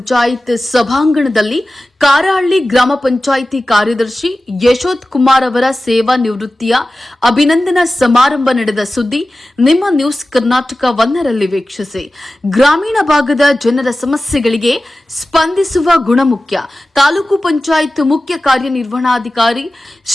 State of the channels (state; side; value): normal; both; correlation 0.95